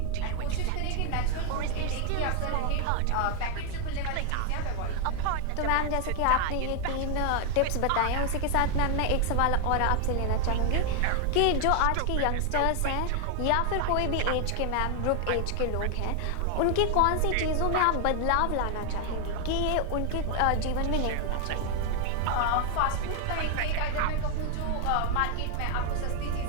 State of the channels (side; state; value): both; different; correlation 0.00